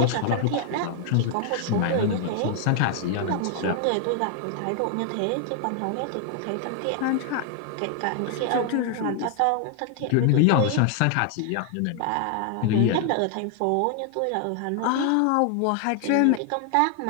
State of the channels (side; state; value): both; different; correlation 0.00